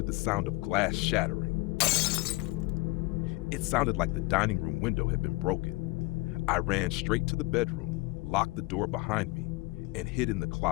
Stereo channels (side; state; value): right; quieter; 23.6 dB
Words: the sound of glass shattering. It sounded like the dining room window had been broken. I ran straight to the bedroom, locked the door behind me, and hid in the